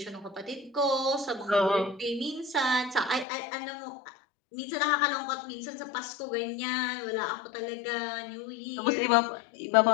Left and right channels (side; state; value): right; drops out; at 3.2 s